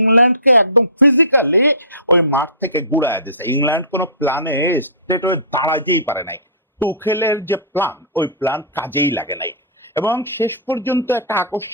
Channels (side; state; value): both; inverted; correlation -0.31